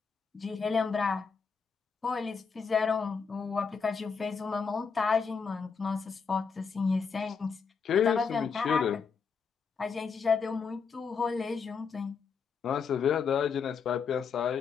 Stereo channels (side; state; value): right; quieter; 5.7 dB